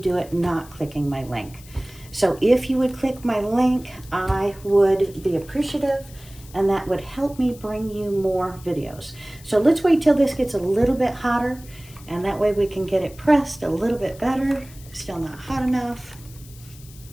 it not clicking my link. So if you would click my link, I would be appreciative, and that would help me bring you more videos. So let's wait till this gets a little bit hotter, and that way we can get it pressed a little bit better. Still not hot enough.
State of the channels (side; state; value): left; noise; hiss, 21 dB below the sound